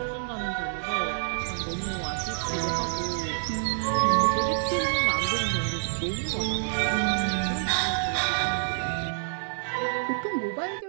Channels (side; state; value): left; silent; 60 dB below the other